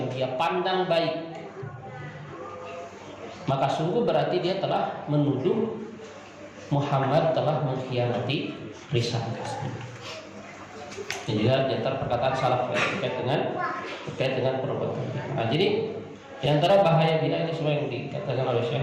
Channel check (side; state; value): both; identical; correlation 1.00